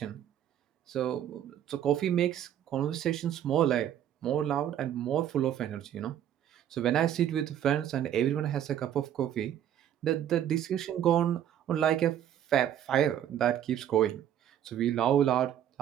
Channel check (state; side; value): quieter; left; 10.5 dB